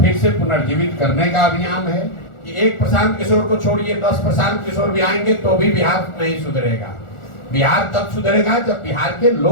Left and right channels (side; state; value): right; late; 1.4 ms